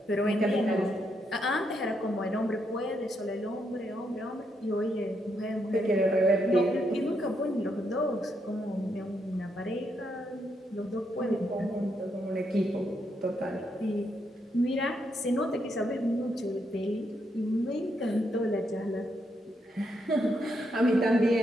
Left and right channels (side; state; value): both; normal; correlation 0.79